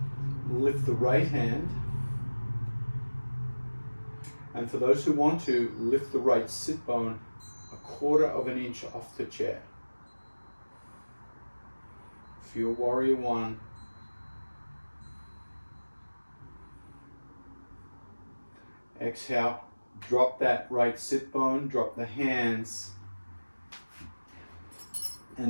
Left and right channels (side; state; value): both; inverted; correlation -1.00